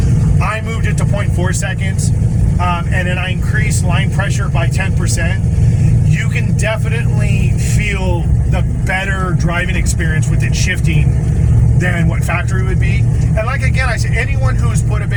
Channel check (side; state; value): both; identical; correlation 1.00